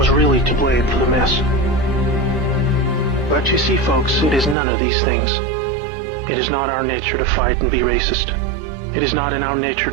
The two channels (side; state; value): left; drops out; at 4.5 s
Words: really to blame for the mess. But you see, folks, it is none of these things. It is not our nature to fight and be racist. It is not in our nature